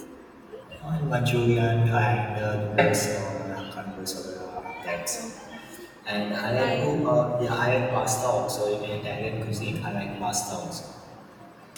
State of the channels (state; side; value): identical; both; correlation 1.00